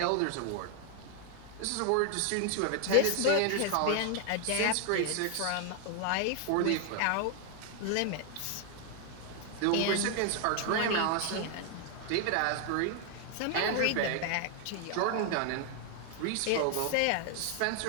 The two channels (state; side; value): different; both; correlation 0.00